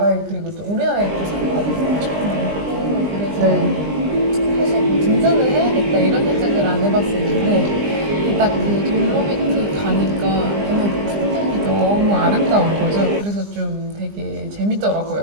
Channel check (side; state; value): left; late; 20 ms